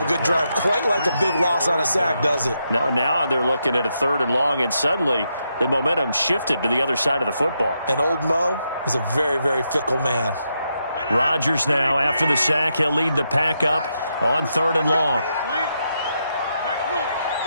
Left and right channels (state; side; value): inverted; both; correlation -0.82